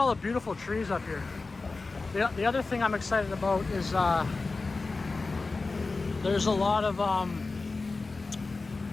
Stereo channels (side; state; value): right; quieter; 3.8 dB